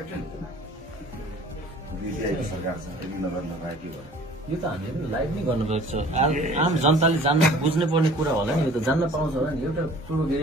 सरकार छ नगर लगायो के भयो यो त हामीले लाइभ नै गर्नुपर्छ आम जनताले जान्न बुझ्नै पर्ने कुरा होला नि यो त जान्न पाउँछ होला नि एउटा पूर्व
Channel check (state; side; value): normal; both; correlation 0.49